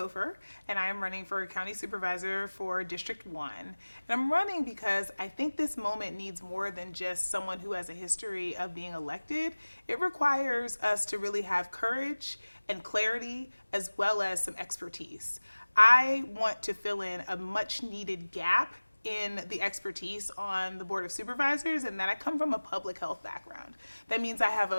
and I am running for county supervisor for District 1. And I'm running because I think this moment needs more than just someone who has a history of being elected. It requires us to really have courage and clarity as well as some expertise. I want to fill in a much needed gap in the expertise on the Board of Supervisors, and that I come from a public health background. That means I have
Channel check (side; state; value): both; inverted; correlation -1.00